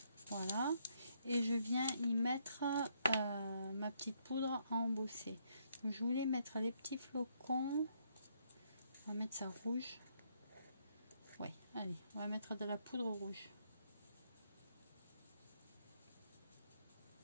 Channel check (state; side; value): inverted; both; correlation -0.72